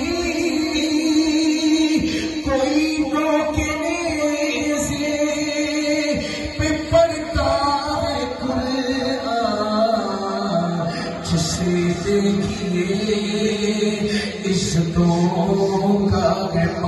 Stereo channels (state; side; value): identical; both; correlation 1.00